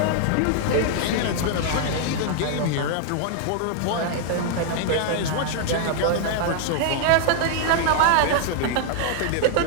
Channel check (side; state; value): both; different; correlation 0.00